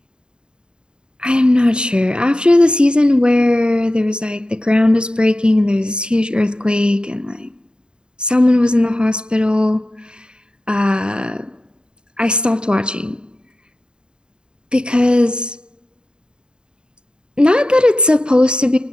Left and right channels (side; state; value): left; late; 0.050 ms